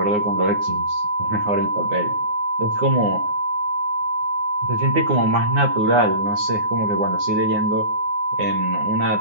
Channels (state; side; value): late; left; 9.6 ms